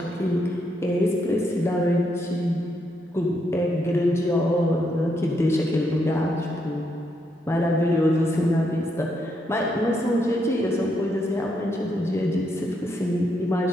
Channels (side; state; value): both; normal; correlation 0.78